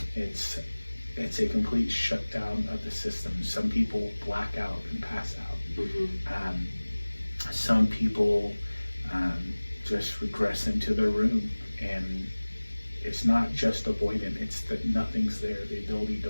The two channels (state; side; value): inverted; both; correlation -1.00